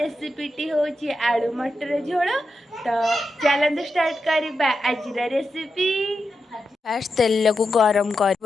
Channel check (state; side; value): normal; both; correlation 0.88